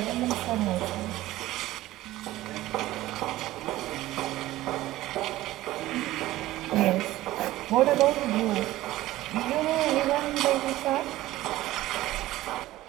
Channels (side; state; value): left; quieter; 16.2 dB